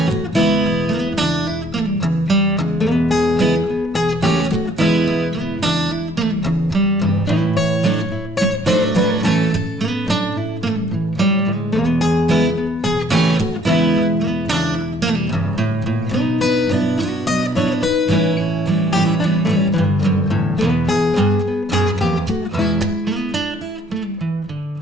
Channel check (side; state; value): both; normal; correlation 0.63